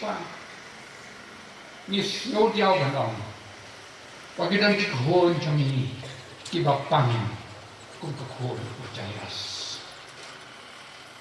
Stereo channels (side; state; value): both; identical; correlation 1.00